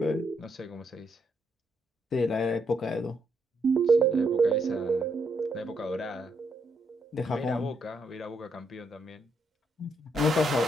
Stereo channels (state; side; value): normal; both; correlation 0.76